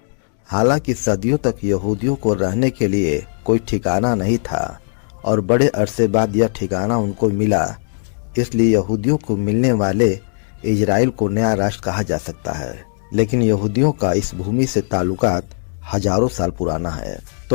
हालांकि सदियों तक यहूदियों को रहने के लिए कोई ठिकाना नहीं था और बड़े अरसे बाद यह ठिकाना उनको मिला, इसलिए यहूदियों को मिलने वाले इजराइल को नया राष्ट्र कहा जा सकता है। लेकिन यहूदियों का इस भूमि से ताल्लुकात हजारों साल पुराना है।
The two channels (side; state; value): right; silent; digital silence